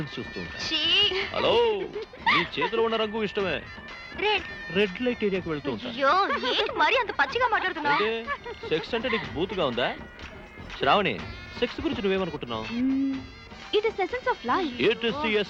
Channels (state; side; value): identical; both; correlation 1.00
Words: చూస్తూ ఉంటా. షీ. హలో, నీ చేతిలో ఉన్న రంగు ఇష్టమే, రెడ్. రెడ్ లైట్ ఏరియాకి వెళ్తూ ఉంటా. అయ్యో, ఏంటి మరీ అంత పచ్చిగా మాట్లాడుతున్నావు? అంటే సెక్స్ అంటే నీకు బూతుగా ఉందా? శ్రావణి, సెక్స్ గురించి నువ్వేమనుకుంటున్నావు? It is essence of life. It is the